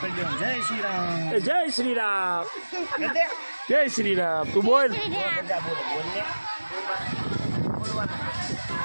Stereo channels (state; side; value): inverted; both; correlation -1.00